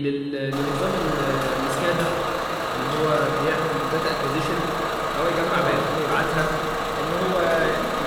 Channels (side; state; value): both; identical; correlation 1.00